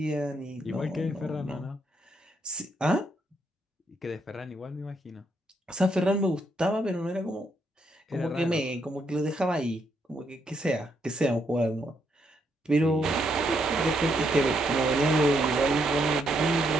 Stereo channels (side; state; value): both; normal; correlation 0.76